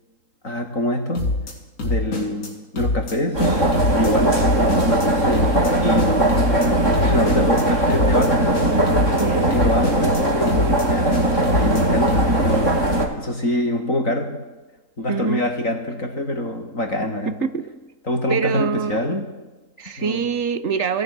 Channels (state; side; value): late; right; 3.6 ms